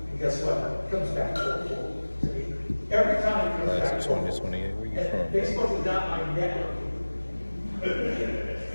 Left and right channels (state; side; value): inverted; both; correlation -1.00